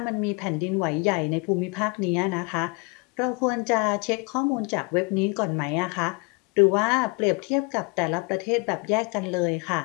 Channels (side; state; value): right; quieter; 30.5 dB